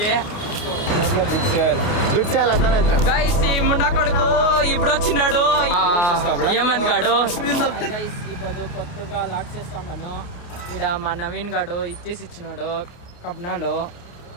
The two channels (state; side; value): late; right; 29 ms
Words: గైస్ ఈ ముండా కొడుకు ఇప్పుడు వచ్చినాడు. ఏమంది గాడు ఇప్పుడు కొత్తగా లాక్ చేస్తున్నాను. ఇక్కడ మా నవీన్ గాడు ఇచ్చేసి ఇచ్చినాడు కబ్నాలో.